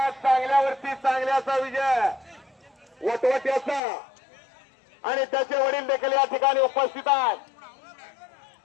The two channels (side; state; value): right; drops out; at 3.8 s